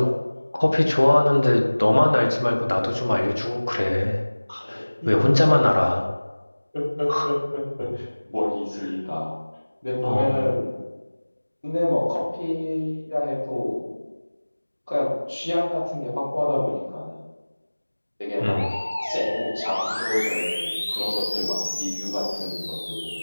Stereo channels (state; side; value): inverted; both; correlation -1.00